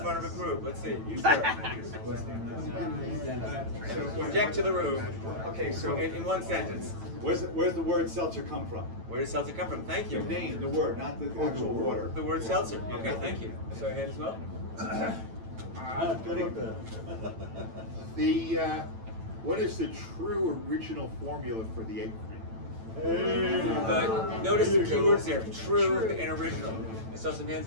of a group? Let's see. You start. Project to the room. Okay, so In one sentence. where's the word seltzer come from? Where does seltzer come from? Thank you. The name, the word, not the actual water. The word seltzer. Okay, thank you. So your hand as well. What is the true original formula for the egg cream? Notice the keywords there. True and original. I saw some hands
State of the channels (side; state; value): left; late; 9.0 ms